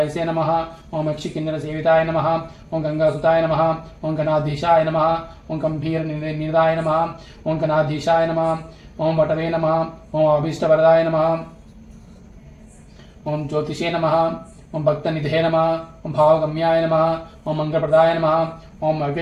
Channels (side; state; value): both; identical; correlation 1.00